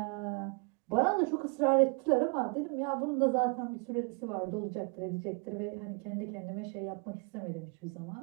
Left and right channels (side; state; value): left; quieter; 34.2 dB